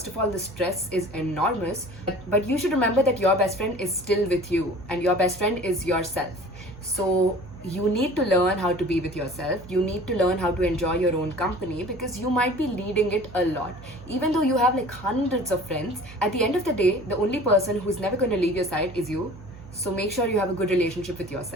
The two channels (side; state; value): right; noise; hum, 17 dB below the sound